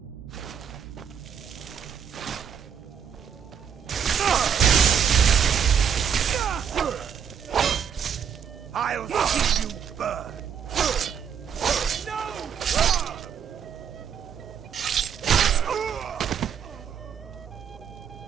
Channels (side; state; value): left; quieter; 7.9 dB